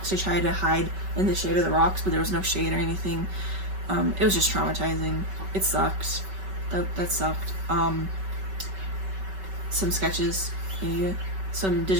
to try to hide in the shade of the rocks, but there was no shade or anything. It was just traumatizing. It sucked. That sucked. Some sketches, yeah, some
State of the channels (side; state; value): left; late; 5.2 ms